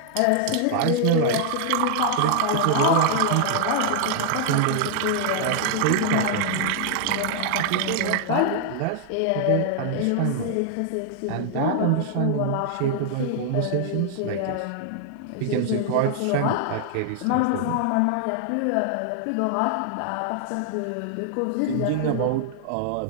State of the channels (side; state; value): both; different; correlation 0.00